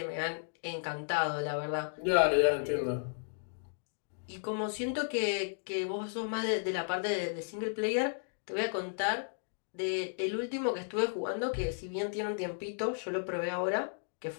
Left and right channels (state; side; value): silent; right; digital silence